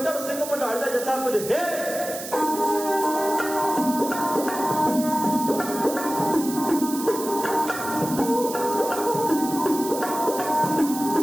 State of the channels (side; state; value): right; noise; hiss, 9 dB below the sound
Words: ਸਿੰਘ ਮਢਾਲ ਦਾ ਜੱਥਾ ਕੁਝ ਹੈ